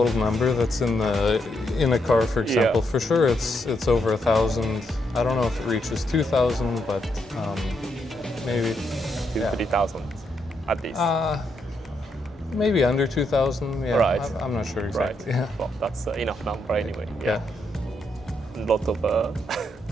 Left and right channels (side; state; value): both; normal; correlation 0.79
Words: number that's in a car, for example. For sure, it's over 1,000. I don't know if it reaches 2,000, but maybe 3,000 at least. Maybe under 2,000. Yeah, right. I'm not sure exactly. Right. Yeah. Well, that's enough number anyway. Yeah. A lot of.